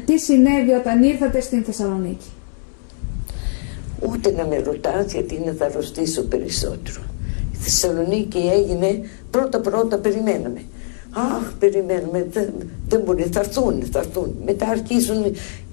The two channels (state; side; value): silent; right; 66 dB below the other